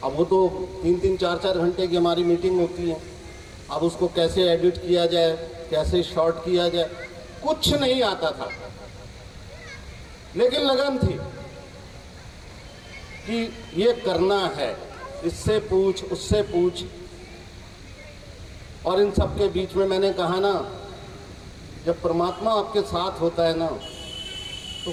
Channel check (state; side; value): identical; both; correlation 1.00